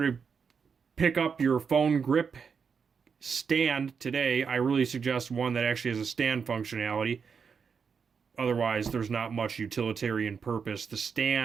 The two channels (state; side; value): quieter; left; 6.1 dB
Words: to pick up your phone grip stand today. I really suggest one that actually has a stand functionality. Otherwise, there's not much utilitarian purpose. The